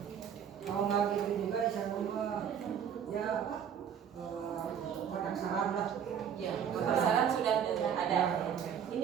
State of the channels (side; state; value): left; quieter; 8.3 dB